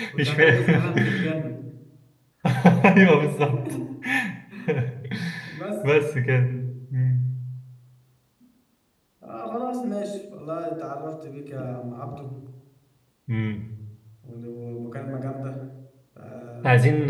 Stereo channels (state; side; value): identical; both; correlation 1.00